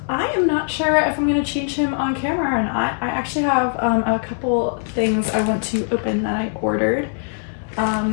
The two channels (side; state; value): right; silent; 65 dB below the other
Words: I am not sure if I'm going to change him on camera or not. I actually have a couple things I want to open that I ordered.